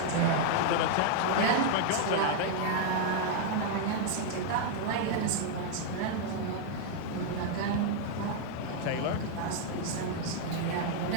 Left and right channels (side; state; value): both; different; correlation 0.00